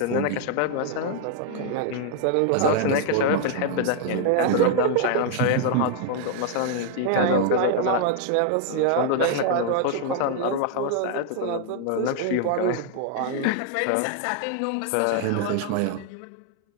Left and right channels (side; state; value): both; different; correlation 0.00